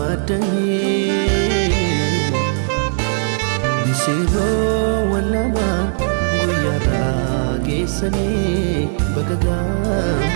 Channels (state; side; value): silent; left; digital silence